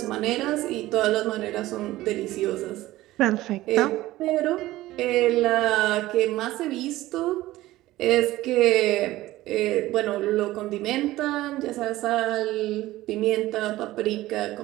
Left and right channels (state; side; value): quieter; left; 16.7 dB